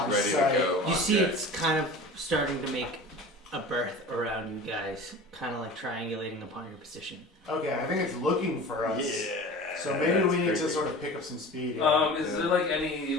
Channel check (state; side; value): normal; both; correlation 0.37